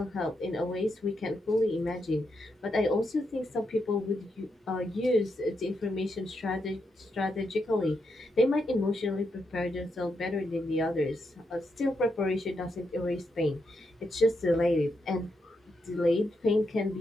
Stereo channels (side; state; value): both; normal; correlation 0.83